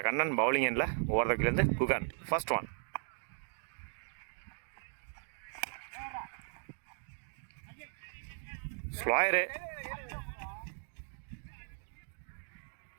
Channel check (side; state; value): left; silent; digital silence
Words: கண்ணன். பவுலிங் எண்ணில் ஓவர்லேருந்து Guhan. First one. Slower